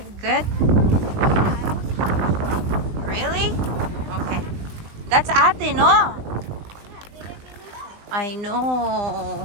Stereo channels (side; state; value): left; late; 19 ms